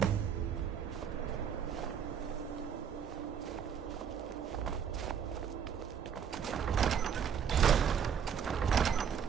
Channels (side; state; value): left; quieter; 7.8 dB